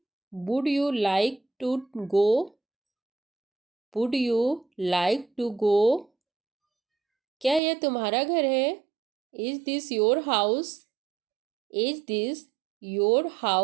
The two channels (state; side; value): drops out; left; at 7.6 s